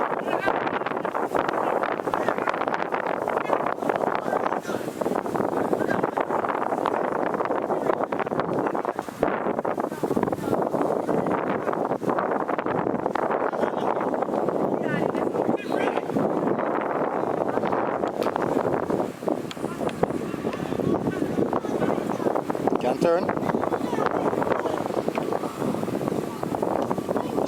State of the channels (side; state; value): both; identical; correlation 1.00